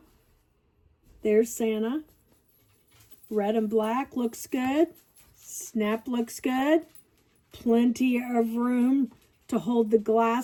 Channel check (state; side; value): identical; both; correlation 1.00